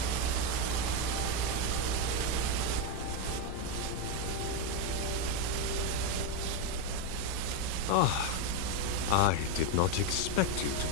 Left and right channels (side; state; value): both; different; correlation 0.04